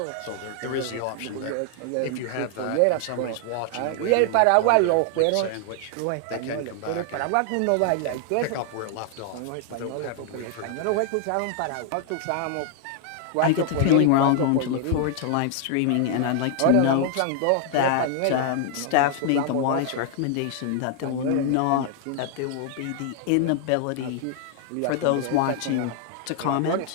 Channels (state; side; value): different; both; correlation 0.00